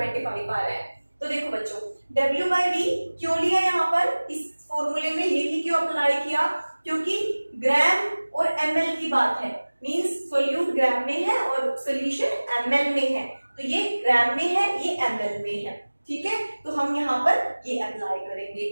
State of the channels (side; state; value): both; inverted; correlation -1.00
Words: आ रहा है। तो देखो बच्चों, W/V क्यों लिया यहाँ पर, इस फॉर्मूले में यही क्यों अप्लाई किया, क्योंकि ग्राम और ml की बात है, मींस सोल्यूट ग्राम में है और सॉल्यूशन ml में है, तो ये ग्राम में है ये ml में है। ठीक है, तो हम यहाँ पर ये अप्लाई करेंगे,